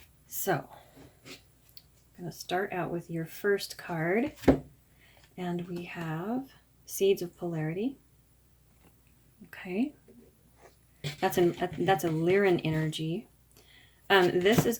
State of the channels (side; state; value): both; identical; correlation 1.00